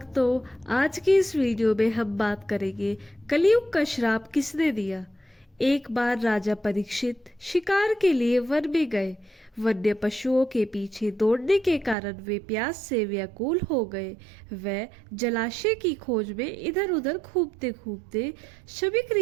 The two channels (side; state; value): left; drops out; at 12.0 s